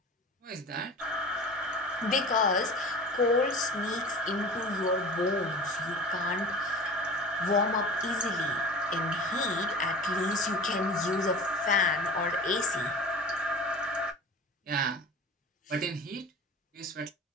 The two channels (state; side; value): normal; both; correlation 0.37